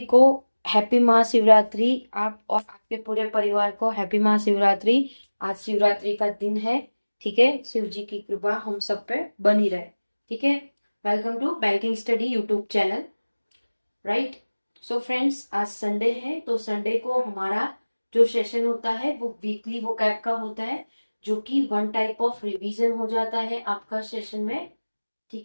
को हैप्पी महाशिवरात्रि। आप और आपके पूरे परिवार को हैप्पी महाशिवरात्रि। आज शिवरात्रि का दिन है, ठीक है। शिव जी की कृपा हम सब पे बनी रहे, ठीक है। Welcome to banking study YouTube channel, right. So friends, आज संडे है, तो संडे को हमारा जो सेशन होता है वो वीकली वोकैब का होता है, जो कि वन टाइप ऑफ रिवीजन हो जाता है आपका सेशन में,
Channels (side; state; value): both; inverted; correlation -1.00